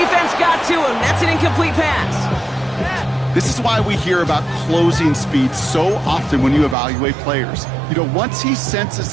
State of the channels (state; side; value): drops out; left; at 6.8 s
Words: got to him. That's an incomplete pass. This is why we hear about closing speed so often when you evaluate players. You know, once he senses